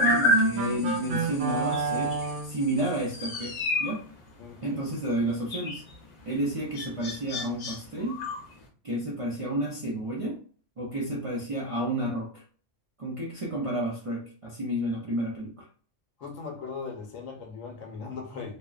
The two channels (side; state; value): both; normal; correlation 0.01